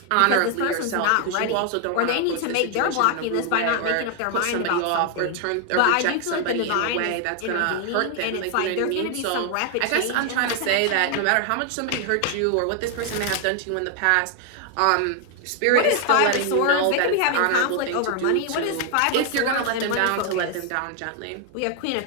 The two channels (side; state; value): both; different; correlation 0.00